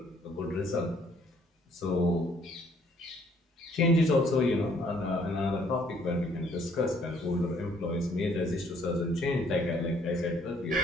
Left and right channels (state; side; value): normal; both; correlation 0.63